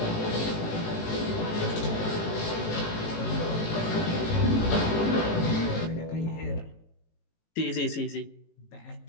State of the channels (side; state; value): right; late; 18 ms